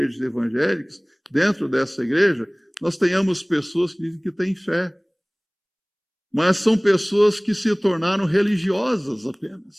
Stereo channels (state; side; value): identical; both; correlation 1.00